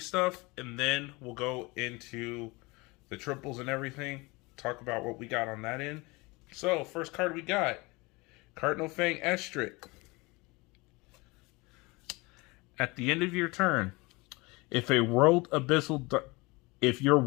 and then we'll go into the triples and everything. Talk about what we got on that end. So, first card we got, Cardinal Fang Estric. At the end of your turn, if your world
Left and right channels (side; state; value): right; quieter; 24.7 dB